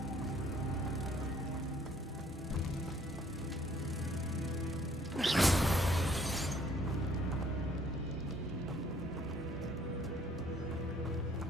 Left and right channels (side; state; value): both; normal; correlation 0.61